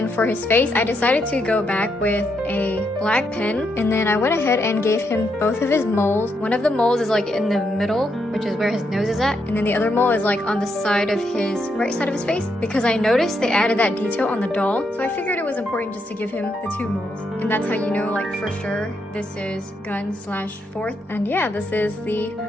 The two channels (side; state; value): both; normal; correlation 0.79